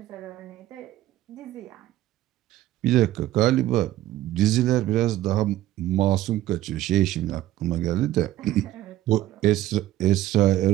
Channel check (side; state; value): left; quieter; 14.5 dB